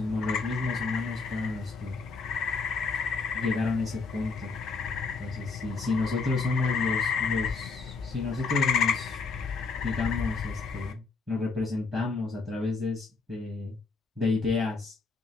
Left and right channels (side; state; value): right; quieter; 4.3 dB